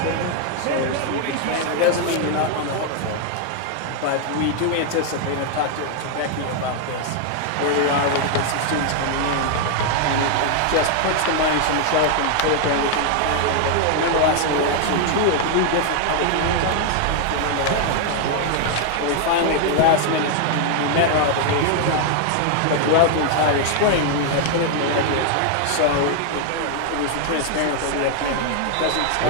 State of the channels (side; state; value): both; different; correlation 0.00